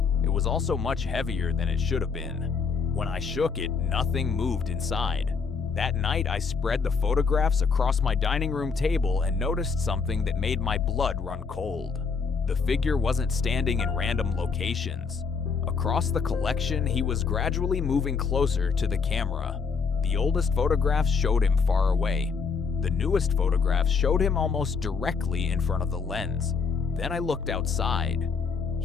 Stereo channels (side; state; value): right; quieter; 5.4 dB